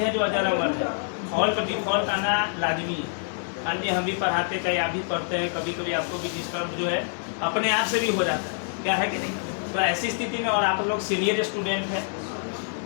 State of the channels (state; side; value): silent; right; digital silence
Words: जो अजर अमर है। फॉल्ट डिफॉल्ट आना लाजमी है। मान लीजिए हम भी पढ़ाते हैं, आप भी पढ़ते हैं, कभी कभी आपको भी डिस्टर्ब जो है अपने आप से भी हो जाता है, क्या है कि नहीं। तो ऐसी स्थिति में, और आप लोग सीनियर स्टूडेंट हैं,